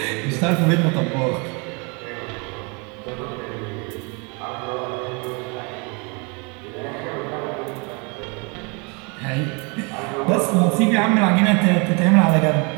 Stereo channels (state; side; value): quieter; left; 31.9 dB